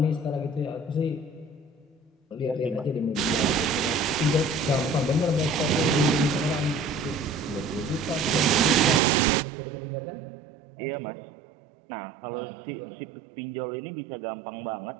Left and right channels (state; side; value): drops out; left; at 9.0 s